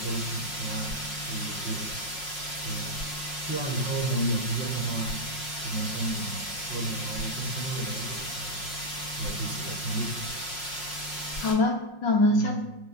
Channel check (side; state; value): right; late; 5.5 ms